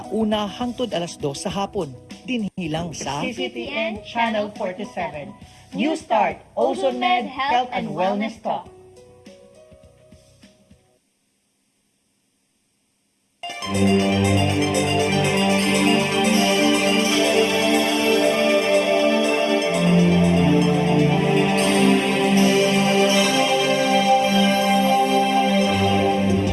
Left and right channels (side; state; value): both; identical; correlation 1.00